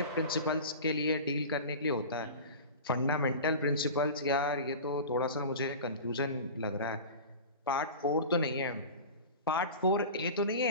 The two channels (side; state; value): both; inverted; correlation -0.33